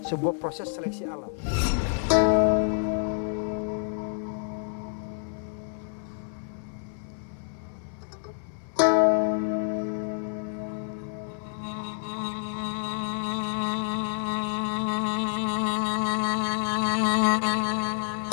sebuah proses seleksi alam.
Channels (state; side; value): silent; right; 59 dB below the other